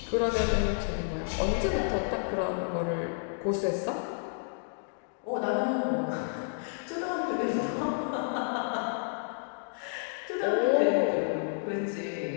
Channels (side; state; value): right; silent; digital silence